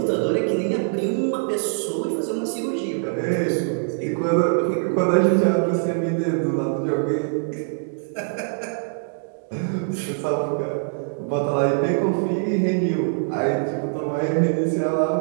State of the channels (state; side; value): silent; left; digital silence